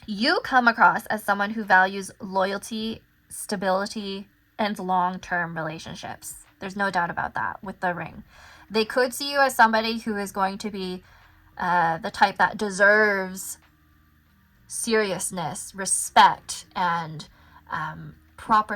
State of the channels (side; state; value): both; identical; correlation 1.00